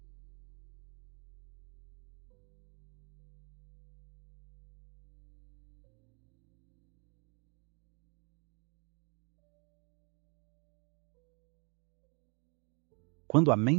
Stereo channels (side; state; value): left; quieter; 35.0 dB